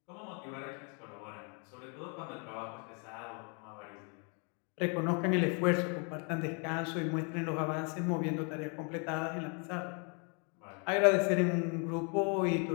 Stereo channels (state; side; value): quieter; right; 36.8 dB